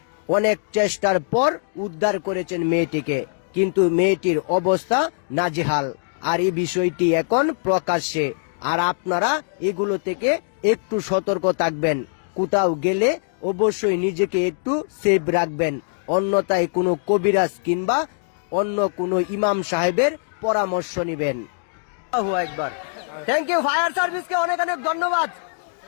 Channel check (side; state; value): right; silent; digital silence